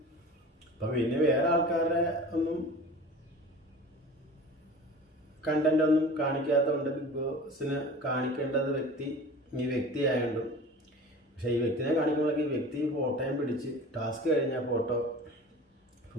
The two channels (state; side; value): normal; both; correlation 0.39